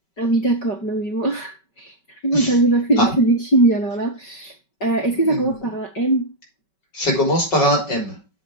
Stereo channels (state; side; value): late; right; 5.2 ms